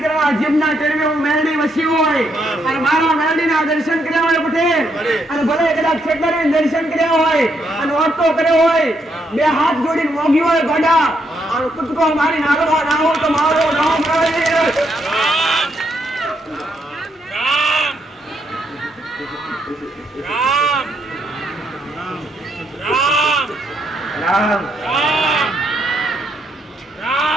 જીભના ટેરવે હું મેરડી વસી હોય, અને મારા મેરડીના દર્શન કર્યા હોય પટેલ, અને ભલે કદાચ છેકરીને દર્શન કર્યા હોય અને વર્તો કર્યો હોય, બે હાથ જોડીને મોગી હોય ગોડા અને કૂદકો મારી નાગવા ના હોય તો મારો નામ રામ.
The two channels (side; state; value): both; normal; correlation 0.76